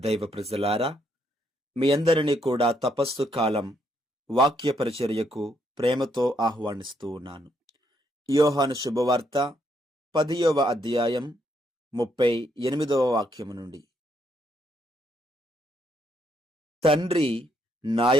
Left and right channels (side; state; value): both; normal; correlation 0.74